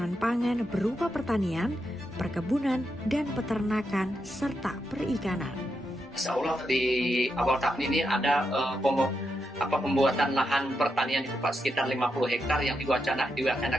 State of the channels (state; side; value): normal; both; correlation 0.84